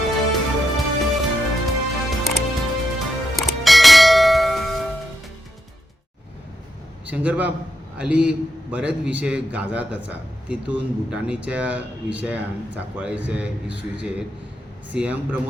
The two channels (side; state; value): both; normal; correlation 0.83